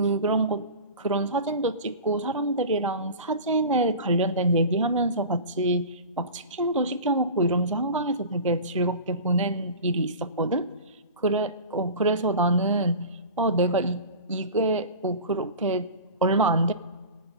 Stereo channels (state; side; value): inverted; both; correlation -0.34